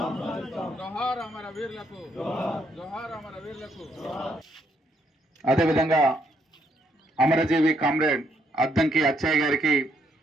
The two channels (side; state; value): both; normal; correlation 0.73